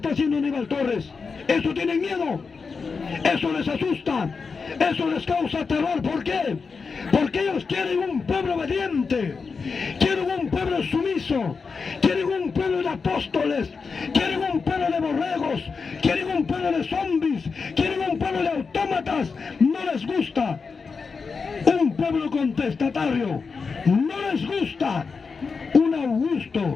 haciendo Aníbal Torres. Eso tienen miedo, eso les asusta, eso les causa terror. ¿Por qué? Porque ellos quieren un pueblo obediente, quieren un pueblo sumiso, quieren un pueblo de apóstoles, quieren un pueblo de borregos, quieren un pueblo de zombies, quieren un pueblo de autómatas. No les gusta un pueblo contestatario, no les gusta un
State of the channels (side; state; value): right; quieter; 5.0 dB